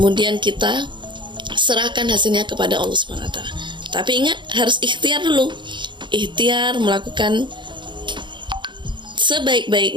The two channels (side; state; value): left; late; 0.23 ms